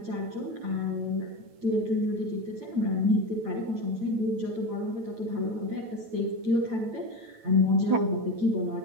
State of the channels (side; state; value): left; late; 9.0 ms